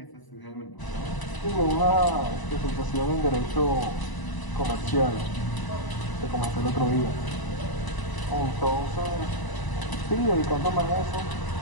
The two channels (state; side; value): late; right; 1.0 ms